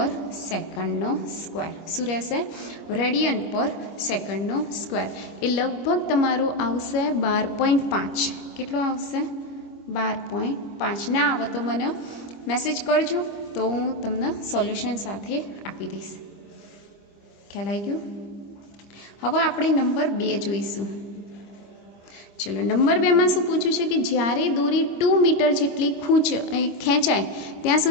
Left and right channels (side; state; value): right; late; 25 ms